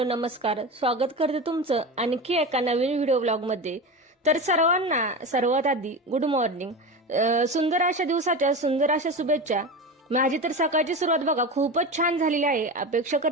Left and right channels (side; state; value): both; normal; correlation 0.25